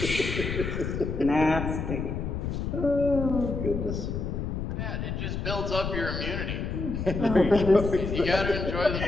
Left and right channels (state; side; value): noise; left; rumble, 3 dB below the sound